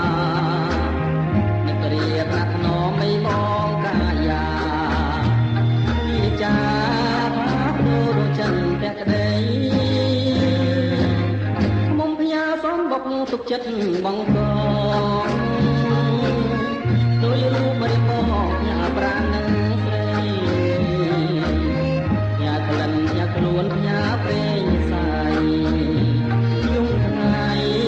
នឹករៀបណាស់ថ្នមមិនបងកាយាវិចាថាព្រោះរចិនតែក្តីមុំផ្ញើសំបុកទុកចិត្តបងកងដោយរូបរិបោញ៉ាប្រាណនឹងស្រីញ៉ាក្លិនញ៉ាខ្លួនញ៉ាព្រេង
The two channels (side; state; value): both; identical; correlation 1.00